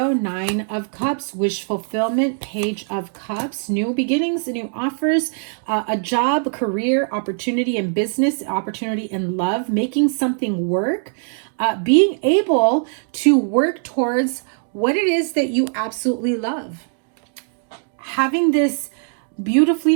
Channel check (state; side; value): silent; left; 60 dB below the other